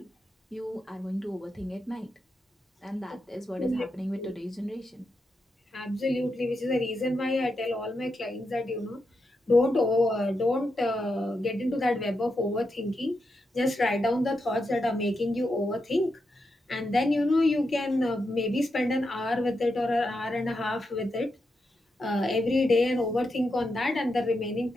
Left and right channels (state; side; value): normal; both; correlation 0.85